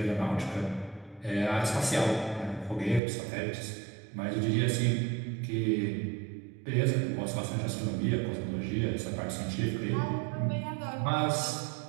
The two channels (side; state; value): left; drops out; at 3.0 s